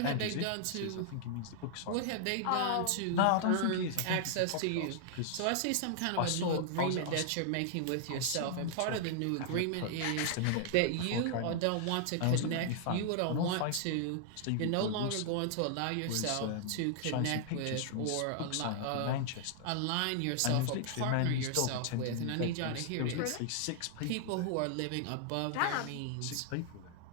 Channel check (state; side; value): different; both; correlation -0.01